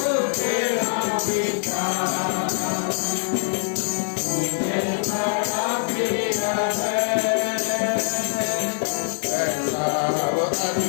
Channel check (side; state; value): right; silent; digital silence